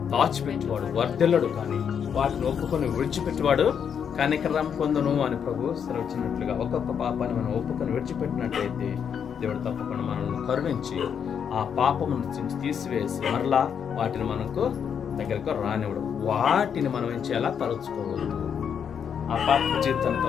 దాచిపెట్టువాడు వర్ధిల్లడు, కానీ వాటిని ఒప్పుకొని విడిచిపెట్టువాడు కనికరం పొందును అని ప్రభు సెలవిచ్చినట్లుగా ఒక్కొక్క పాపాన్ని మనం ఒప్పుకొని విడిచిపెట్టినట్లయితే దేవుడు తప్పకుండా మనల్ని కరుణించి ఆ పాపము నుంచి తీసివేసి మరలా వాటిని మనకు దగ్గరకు రానివ్వడు. వాటిని మనం ఏం చేయాలా? తలుచుకోవద్దు. ఆ పాప జీవితాన్ని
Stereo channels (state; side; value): quieter; right; 7.7 dB